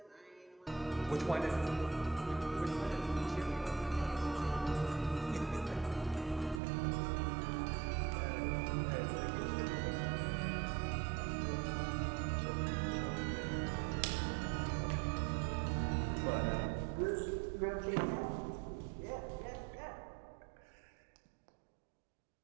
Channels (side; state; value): left; drops out; at 6.6 s